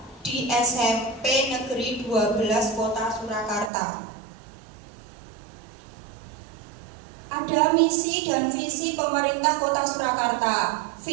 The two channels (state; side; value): drops out; left; at 3.7 s